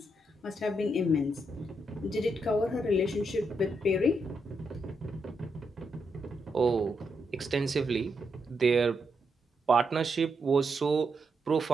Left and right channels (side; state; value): both; normal; correlation 0.81